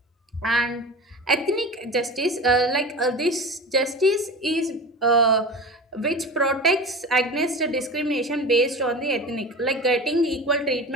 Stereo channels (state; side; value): normal; both; correlation 0.31